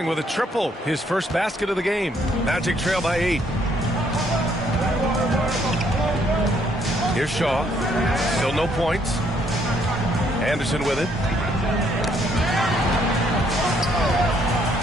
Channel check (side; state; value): both; normal; correlation 0.69